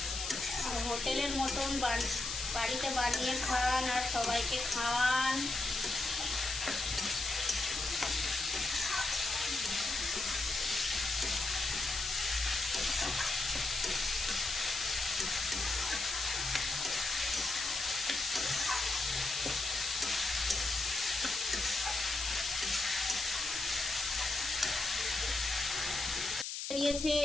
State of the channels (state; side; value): noise; left; hiss, 4 dB below the sound